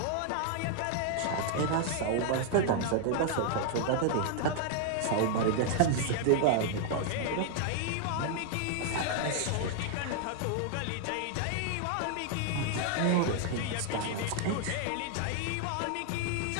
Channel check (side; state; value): both; different; correlation 0.00